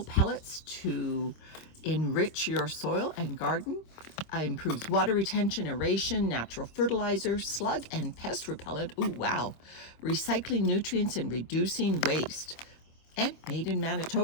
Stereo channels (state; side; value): late; right; 25 ms